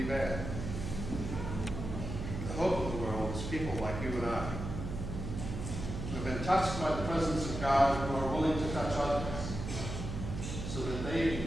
bad. The hope of the world is people like you and I, who have been touched by the presence of God, who are willing to touch others, so that they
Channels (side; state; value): right; noise; hum, 5 dB below the sound